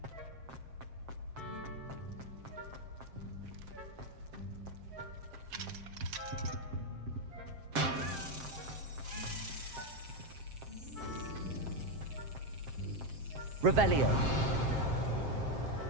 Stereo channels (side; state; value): left; late; 7.6 ms